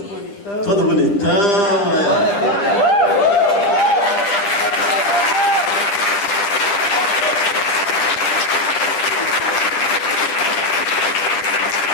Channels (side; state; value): right; late; 9.9 ms